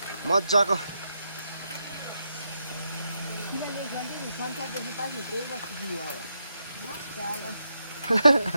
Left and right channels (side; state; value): both; inverted; correlation -0.83